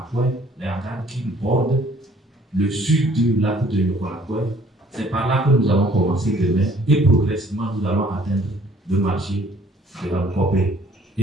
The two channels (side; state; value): both; normal; correlation 0.58